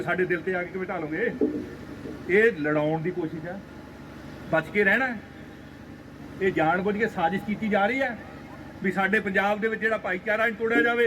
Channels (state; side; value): identical; both; correlation 1.00